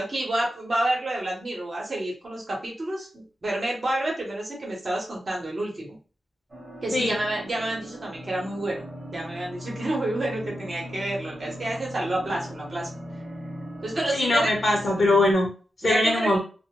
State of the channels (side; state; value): both; normal; correlation 0.88